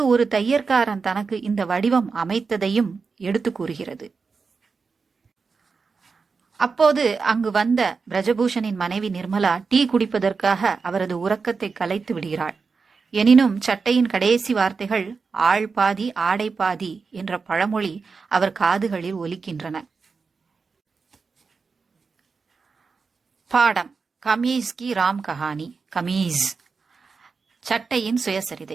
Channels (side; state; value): left; quieter; 4.9 dB